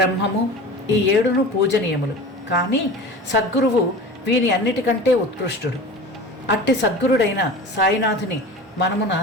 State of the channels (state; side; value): normal; both; correlation 0.35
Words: ఈ ఏడును పూజనీయములు. కానీ సద్గురువు వీని అన్నిటికంటే ఉత్కృష్టుడు. అట్టి సద్గురుడైన సాయినాథుని మనమున